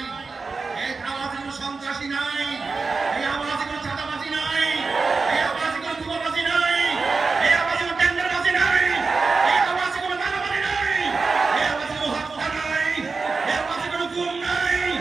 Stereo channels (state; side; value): quieter; left; 4.3 dB